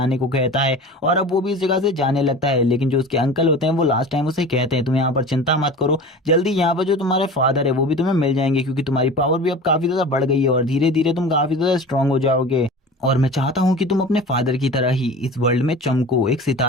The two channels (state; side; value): normal; both; correlation 0.36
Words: को कहता है और अब वो भी इस जगह से जाने लगता है। लेकिन जो उसके अंकल होते हैं वो लास्ट टाइम उसे कहते हैं तुम यहाँ पर चिंता मत करो, जल्दी यहाँ पर जो तुम्हारे फादर है वो भी तुम्हें मिल जाएंगे, क्योंकि तुम्हारी पावर भी अब काफी ज्यादा बढ़ गई है और धीरे धीरे तुम काफी ज्यादा स्ट्रांग हो जाओगे। और मैं चाहता हूँ कि तुम अपने फादर की तरह ही इस वर्ल्ड में चमको, एक